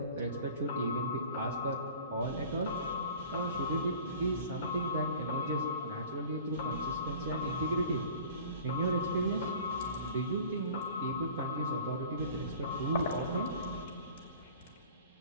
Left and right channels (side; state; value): both; inverted; correlation -0.44